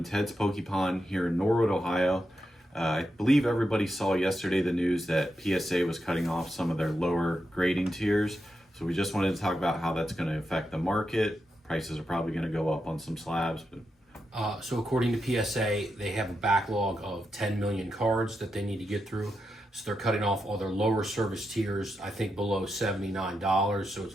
Ted's Pokepon here in Norwood, Ohio. I believe everybody saw yesterday the news that PSA was cutting off some of their lower grading tiers. So we just wanted to talk about how that's going to affect the market. Prices are probably going to go up on some slabs. So according to PSA, they have a backlog of 10 million cards that they need to get through. So they're cutting off all their lower service tiers, I think below $79. So it's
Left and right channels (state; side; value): normal; both; correlation 0.86